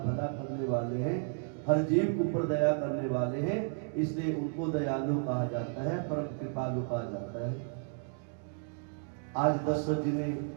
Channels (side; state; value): left; silent; 56 dB below the other